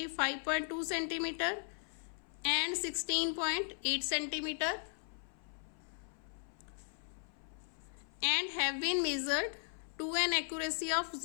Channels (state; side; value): silent; right; 53 dB below the other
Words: centimetre and 16.8 centimetre and have been measured to an accuracy of